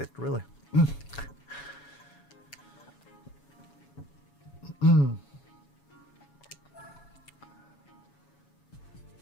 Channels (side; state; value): right; late; 7.1 ms